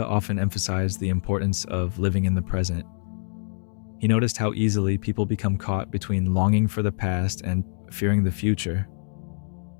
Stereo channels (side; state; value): right; silent; 55 dB below the other